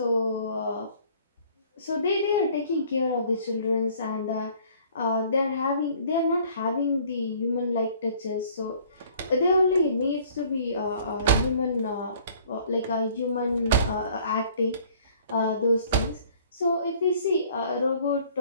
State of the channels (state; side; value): inverted; both; correlation -0.56